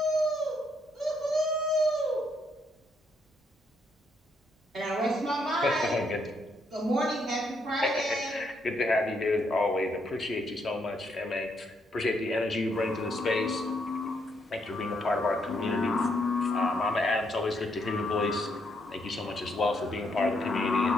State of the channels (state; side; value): normal; both; correlation 0.75